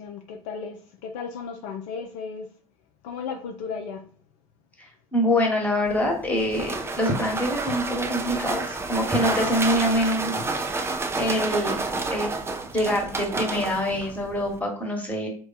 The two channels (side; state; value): both; normal; correlation 0.38